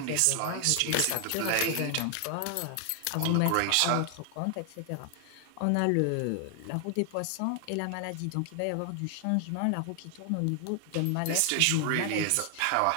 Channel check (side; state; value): both; different; correlation 0.00